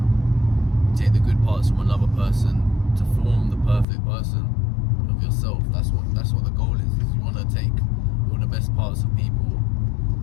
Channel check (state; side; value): drops out; right; at 3.9 s